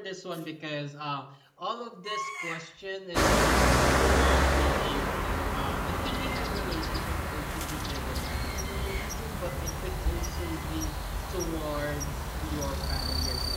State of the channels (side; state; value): both; identical; correlation 1.00